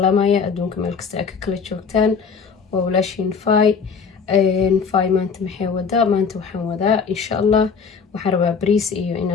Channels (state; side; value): quieter; right; 5.8 dB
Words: adduunka meel kasta aa ka kala joogtaan waa walaashiin fay maanta maxay wadaa maanta waxaan wadaa insha allah waxaan rabaa bariis iyo